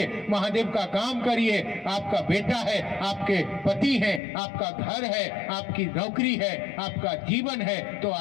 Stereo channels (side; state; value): right; drops out; at 4.2 s